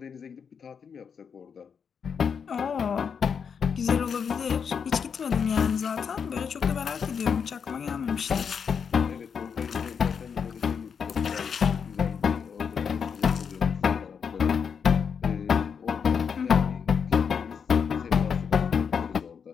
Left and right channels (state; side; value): quieter; right; 6.7 dB